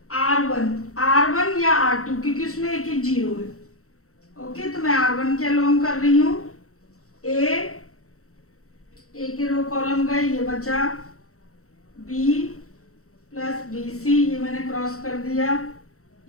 R1 या R2, क्योंकि उसमें एक एक 0 है, ओके। तो मैं R1 के अलोंग कर रही हूँ। ए के रो कॉलम गए, ये बचा B प्लस BC, ये मैंने क्रॉस कर दिया,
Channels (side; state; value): right; late; 0.64 ms